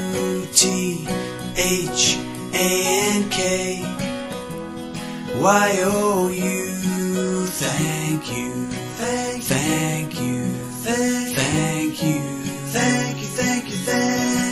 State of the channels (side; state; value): both; identical; correlation 1.00